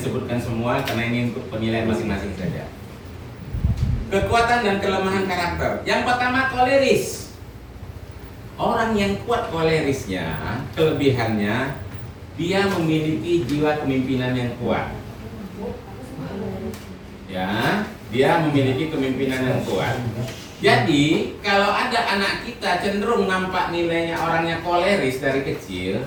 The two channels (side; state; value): both; identical; correlation 1.00